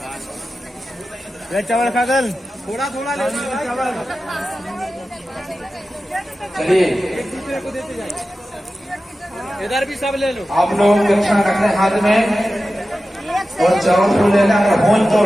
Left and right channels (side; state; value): both; normal; correlation 0.94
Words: चावल खागल थोड़ा थोड़ा चावल। चलिए इधर भी सब ले लो। आप लोग दक्षिण रखने हाथ में और चावल फूल लेना। होल तो